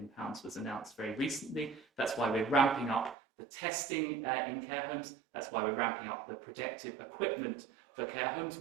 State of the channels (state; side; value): drops out; left; at 3.2 s